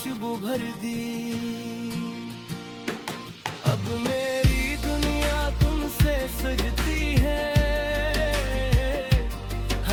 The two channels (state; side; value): identical; both; correlation 1.00